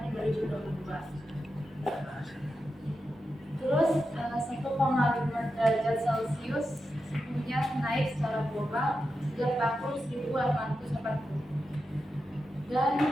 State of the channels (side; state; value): both; normal; correlation 0.89